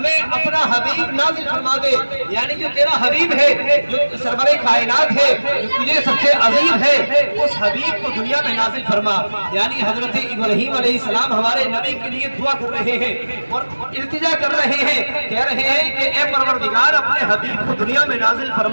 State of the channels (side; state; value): both; inverted; correlation -1.00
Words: اپنا حبیب نازل فرما دے، یعنی جو تیرا حبیب ہے، جو سرور کائنات ہے، جو تجھے سب سے عظیم ہے، اس حبیب کو دنیا میں نازل فرما۔ یعنی حضرت ابراہیم علیہ السلام ہمارے نبی کے لیے دعا کر رہے ہیں اور التجا کر رہے ہیں، کہہ رہے ہیں کہ اے پروردگار اپنے حبیب کو دنیا میں نازل